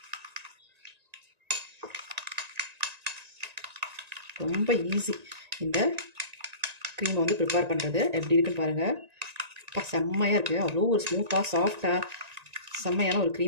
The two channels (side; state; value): left; late; 1.9 ms